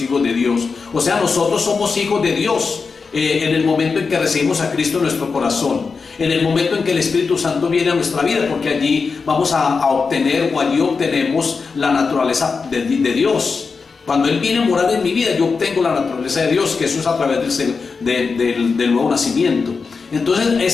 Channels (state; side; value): quieter; right; 4.9 dB